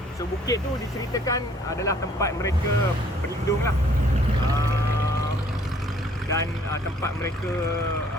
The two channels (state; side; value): normal; both; correlation 0.60